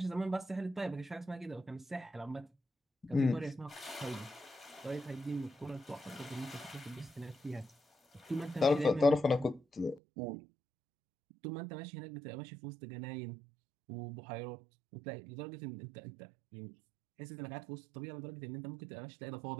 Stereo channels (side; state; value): left; drops out; at 10.0 s